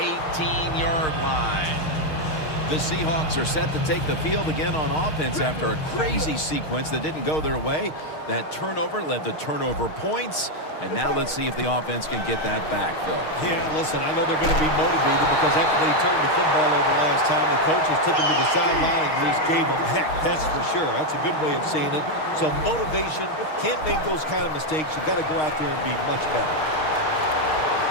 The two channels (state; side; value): late; right; 6.4 ms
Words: 18-yard line. The Seahawks are set to take the field again on offense after a crazy sequence that didn't go their way. That turnover led to turnover points. And now let's see if the offense can get that back, Phil. Yeah, listen, I know they're going to be motivated because after they turned the football over last time, the coaches took them to the sideline and just gave them heck. That's for sure. That's a good way of seeing it. So motivation, can't make those kind of mistakes. You got to go out there and be much better.